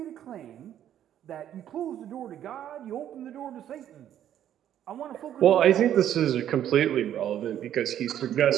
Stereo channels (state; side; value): quieter; left; 10.8 dB